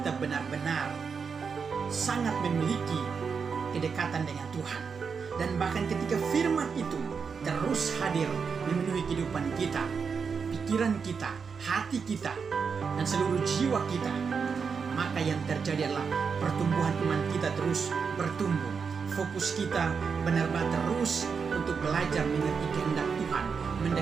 benar-benar sangat memiliki kedekatan dengan Tuhan. Dan bahkan ketika firman itu terus hadir memenuhi kehidupan kita, pikiran kita, hati kita, dan seluruh jiwa kita, maka yang terjadi adalah pertumbuhan iman kita terus bertumbuh. Fokus kita benar-benar terus untuk belajar mengerti kehendak Tuhan,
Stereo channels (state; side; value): quieter; left; 5.8 dB